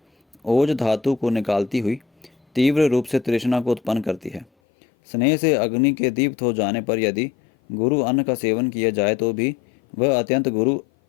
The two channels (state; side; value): drops out; right; at 4.5 s